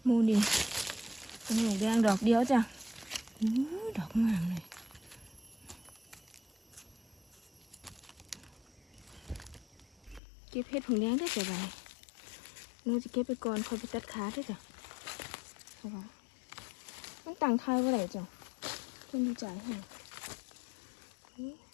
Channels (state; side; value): drops out; right; at 10.2 s